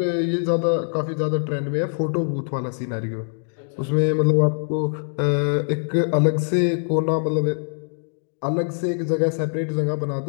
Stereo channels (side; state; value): right; silent; digital silence